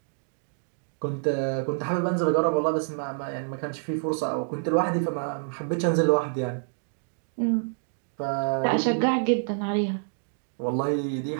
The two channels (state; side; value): silent; left; digital silence